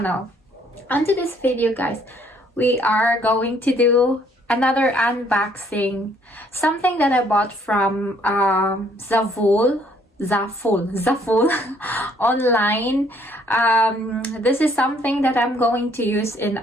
Onto this video guys, we are going to do another unboxing. Something that I bought from Zaful online. This is something that I'm going to use in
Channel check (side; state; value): both; normal; correlation 0.64